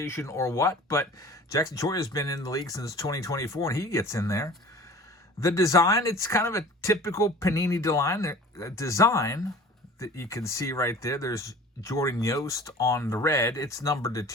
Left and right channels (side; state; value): both; normal; correlation 0.43